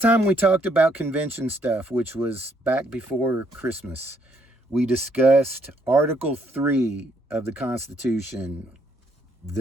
we talked about convention stuff, which was back before Christmas, we discussed Article 3 of the Constitution,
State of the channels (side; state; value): both; normal; correlation 0.70